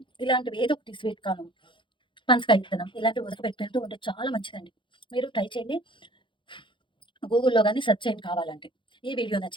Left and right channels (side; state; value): right; late; 0.24 ms